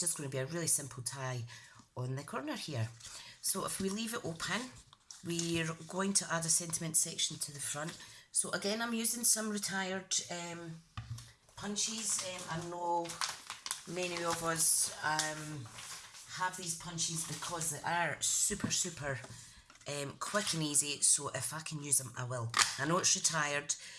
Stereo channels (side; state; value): both; identical; correlation 1.00